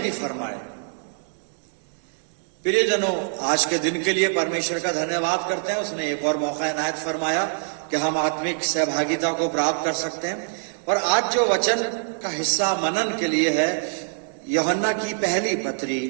फरमाए। प्रियजनों, आज के दिन के लिए परमेश्वर का धन्यवाद करते हैं। उसने एक और मौका इनायत फरमाया कि हम आत्मिक सहभागिता को प्राप्त कर सकते हैं। और आज जो वचन का हिस्सा मनन के लिए है, यूहन्ना की पहली पत्री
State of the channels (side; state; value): left; silent; 62 dB below the other